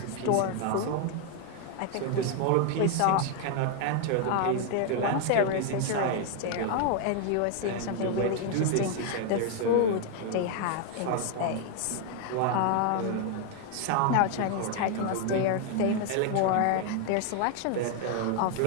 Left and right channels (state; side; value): different; both; correlation 0.00